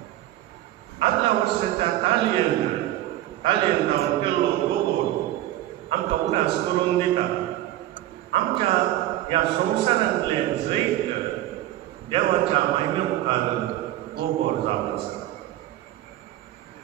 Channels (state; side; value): quieter; left; 14.4 dB